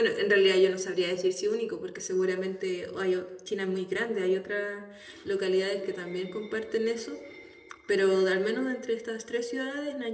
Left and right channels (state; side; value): identical; both; correlation 1.00